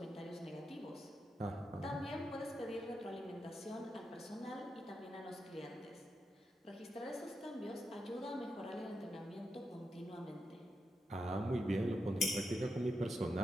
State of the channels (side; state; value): both; normal; correlation 0.85